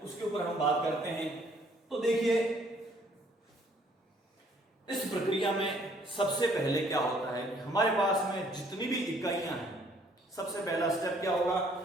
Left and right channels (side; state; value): both; normal; correlation 0.62